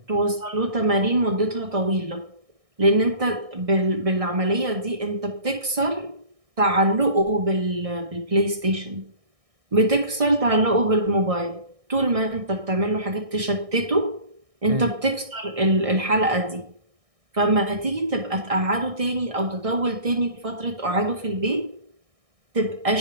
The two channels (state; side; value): late; left; 1.6 ms